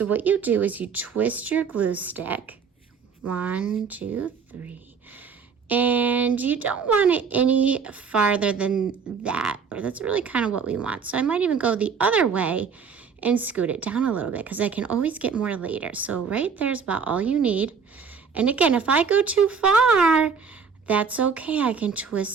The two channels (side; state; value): left; quieter; 6.0 dB